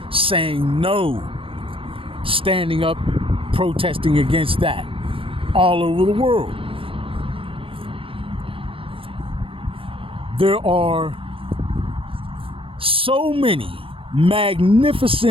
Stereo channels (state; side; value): late; left; 0.26 ms